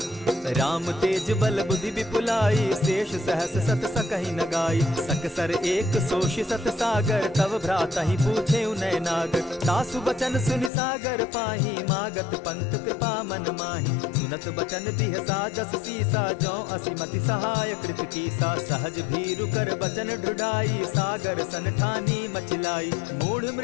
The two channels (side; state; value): right; drops out; at 10.7 s